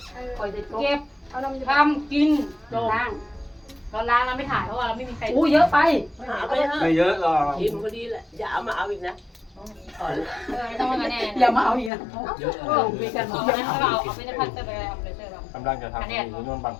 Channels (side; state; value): right; drops out; at 11.9 s